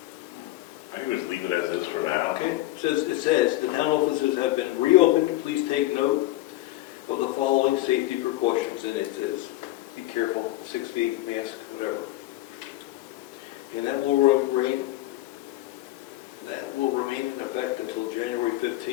I think we just leave it as is for now. Okay, it says the town offices have been reopened. Please take note of the following safety precautions. And it says, be careful, 6 feet, mask, whatever. And that will remain in effect until January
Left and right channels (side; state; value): right; quieter; 16.8 dB